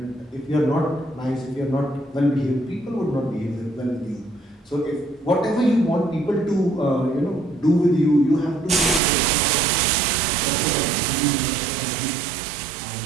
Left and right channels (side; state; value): left; drops out; at 9.0 s